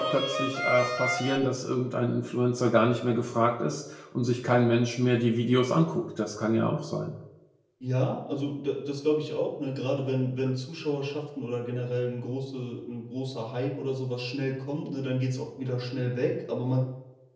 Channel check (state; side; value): identical; both; correlation 1.00